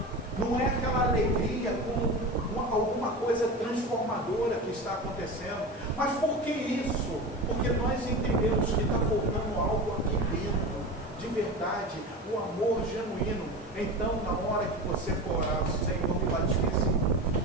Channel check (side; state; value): both; normal; correlation 0.27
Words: não é aquela alegria com alguma coisa transformadora que está acontecendo. Mas por que isso? Porque nós entendemos que está faltando algo aqui dentro, de verdade, o amor genuíno. Então, na hora que você for orar, Senhor, me batize